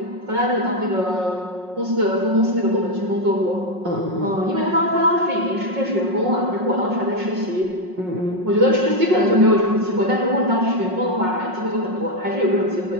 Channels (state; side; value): late; left; 5.5 ms